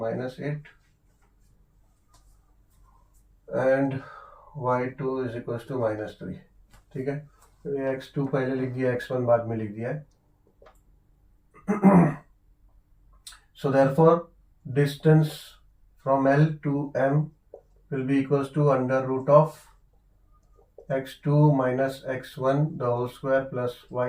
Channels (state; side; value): identical; both; correlation 1.00